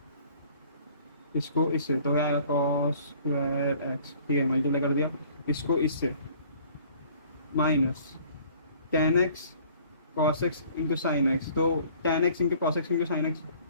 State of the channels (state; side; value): inverted; both; correlation -0.54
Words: इसको इससे, तो क्या आएगा? cos²x, ठीक है, मल्टीप्लाई कर दिया। इसको इससे -10x cos x into sine x, तो 10x into cos x into sine x,